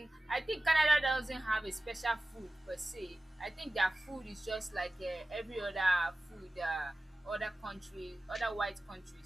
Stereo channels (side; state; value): both; normal; correlation 0.96